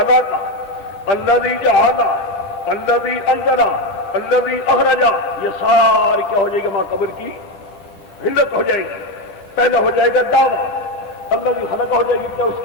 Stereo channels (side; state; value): right; late; 10 ms